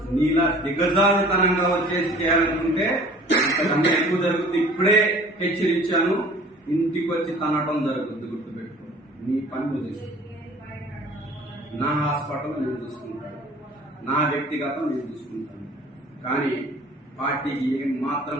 నీలా దిగజారుతనంగా వచ్చేసి చేయాలనుకుంటే అంతకన్నా ఎక్కువ జరుగుతుంది. ఇప్పుడే హెచ్చరించాను, ఇంటికి వచ్చి తనటం జరుగుతుంది, గుర్తుపెట్టుకో. నీ పని నువ్వు చేసుకో. నా హాస్పిటల్ నేను చూసుకుంటాను, నా వ్యక్తిగతం నేను చూసుకుంటాను. కానీ పార్టీకి ఏం మాత్రం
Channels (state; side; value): normal; both; correlation 0.49